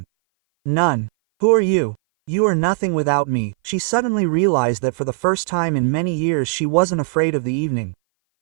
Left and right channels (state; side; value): silent; left; 59 dB below the other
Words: None. Who are you? You are nothing without me. She suddenly realized that for the first time in many years she wasn't afraid of the evening.